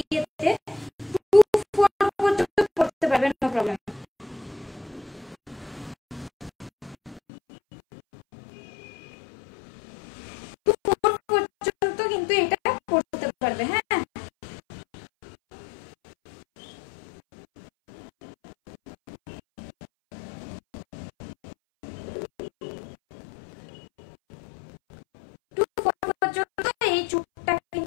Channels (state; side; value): drops out; right; at 7.2 s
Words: 2-4 পর্যন্ত পড়তে পারবে, নো প্রবলেম। পর্যন্ত কিন্তু এটা পড়তে পারবে। হ্যাঁ পর্যন্ত এই চুপটা